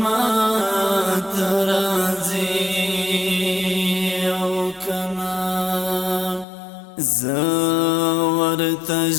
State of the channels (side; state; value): right; drops out; at 6.5 s